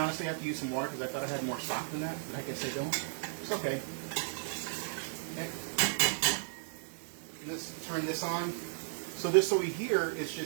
have to use some water because I thought I had more stock than that, but I guess I don't. It's okay. Okay. Let's turn this on. So this over here is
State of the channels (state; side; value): silent; left; digital silence